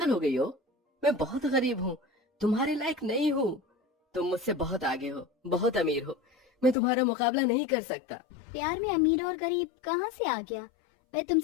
हो गई हो? मैं बहुत गरीब हूँ, तुम्हारे लायक नहीं हूँ। तुम मुझसे बहुत आगे हो, बहुत अमीर हो, मैं तुम्हारा मुकाबला नहीं कर सकता। प्यार में अमीर और गरीब कहाँ से आ गया? मैं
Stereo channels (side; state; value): right; drops out; at 6.8 s